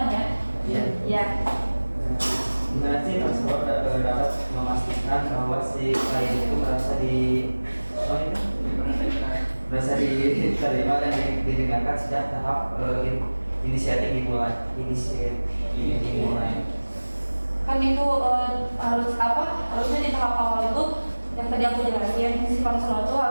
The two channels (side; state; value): both; inverted; correlation -1.00